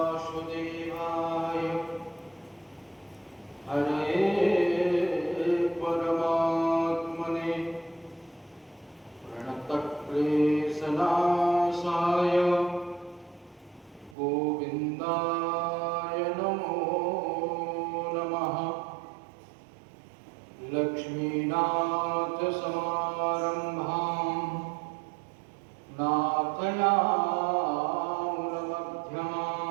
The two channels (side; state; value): left; drops out; at 14.2 s